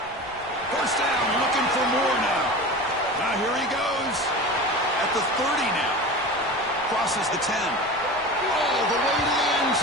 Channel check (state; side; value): noise; left; rumble, 23 dB below the sound